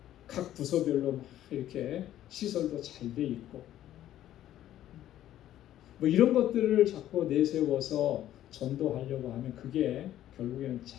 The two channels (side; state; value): right; quieter; 12.6 dB